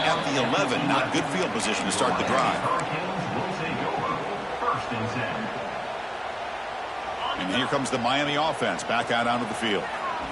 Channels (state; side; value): identical; both; correlation 1.00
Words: at the 11. Not good field position to start the drive. And here comes the Miami offense back out onto the field.